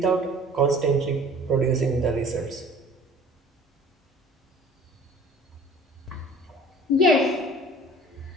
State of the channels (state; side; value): normal; both; correlation 0.47